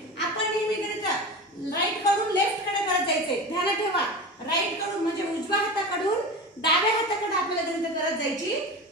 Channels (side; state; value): both; normal; correlation 0.29